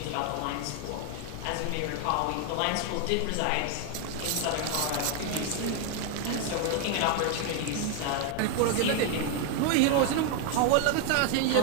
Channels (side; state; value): both; different; correlation 0.01